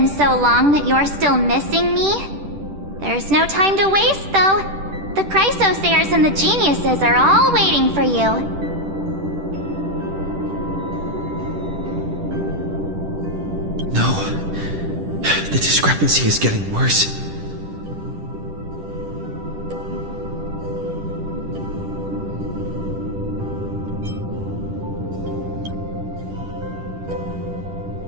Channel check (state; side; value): late; left; 10 ms